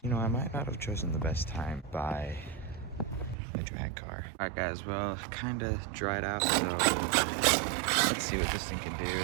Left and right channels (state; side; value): drops out; left; at 3.4 s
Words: You know, I might not have chosen the best time to buy a drag car. Alright guys, well, kind of dried out, so let's see what this thing can